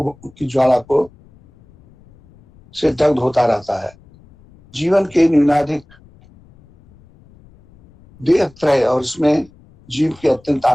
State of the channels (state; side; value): noise; left; rumble, 27 dB below the sound